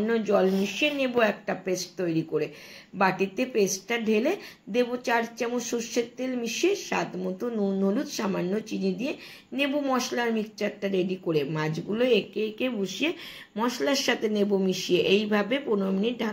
জল মিশিয়ে নেব একটা পেস্ট তৈরি করে। বাটিতে পেস্টটা ঢেলে দেব 4 চামচ সর্ষের তেল মিশিয়ে স্বাদ মতো নুন হলুদ সামান্য চিনি দিয়ে নেব মশলার মিক্সচারটা রেডি করে। মাছগুলো একে একে বসিয়ে মশলার সাথে নেব মিশিয়ে। এইভাবে 15 মিনিট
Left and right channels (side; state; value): both; identical; correlation 1.00